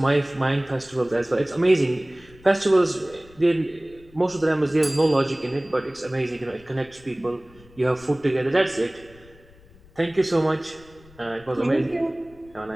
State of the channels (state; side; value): noise; left; rumble, 25 dB below the sound